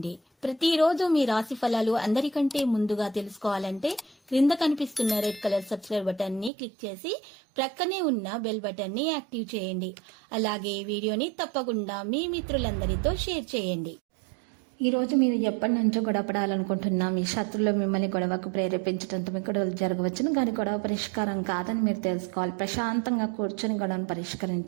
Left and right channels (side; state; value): left; drops out; at 6.5 s